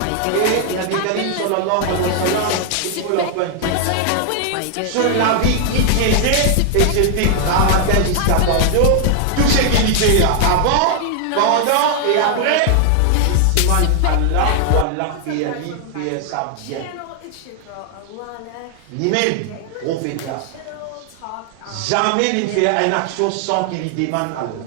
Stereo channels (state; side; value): different; both; correlation 0.00